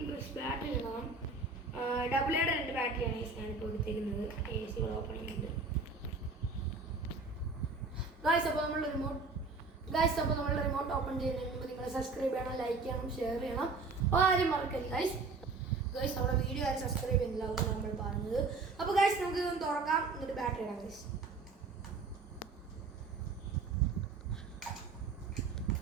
ബാറ്ററി ഇടണം. AA രണ്ട് ബാറ്ററിയാണ് ഗൈസ് ഞാനിപ്പോൾ എടുത്തേക്കുന്നത്. AC ഓപ്പൺ ചെയ്യുന്നുണ്ട് ഗൈസ്. അപ്പോൾ നമ്മൾ റിമോട്ട് ഓപ്പൺ ചെയ്യുന്നതിന് മുമ്പ് നിങ്ങൾ സബ്സ്ക്രൈബ് ചെയ്യണം, ലൈക്ക് ചെയ്യണം, ഷെയർ ചെയ്യണം, ആരും മറക്കരുത് ഗൈസ്. നമ്മുടെ വീഡിയോ ആരും സബ്സ്ക്രൈബ് ചെയ്യുന്നില്ല, അതാണ് നമ്മൾ പറഞ്ഞത്. അപ്പോൾ ഗൈസ് നമുക്ക് ഇതൊന്ന് തുറക്കാം, എന്നിട്ട് ബാറ്ററി ഇടാം ഗൈസ്.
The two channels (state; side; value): quieter; left; 4.1 dB